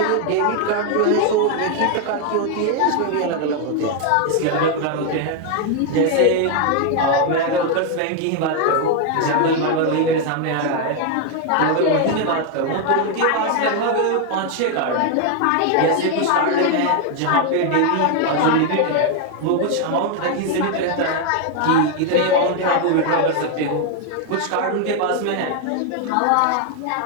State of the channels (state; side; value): different; both; correlation 0.01